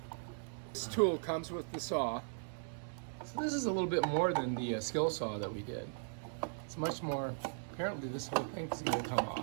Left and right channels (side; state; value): left; silent; 52 dB below the other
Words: This tool comes with the saw. So this is a little bit more than the skill saw that we did. It's much more, apparently this whole thing is going to come